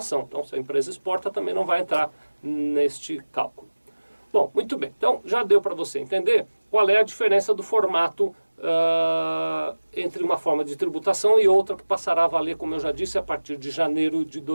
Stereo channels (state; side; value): inverted; both; correlation -1.00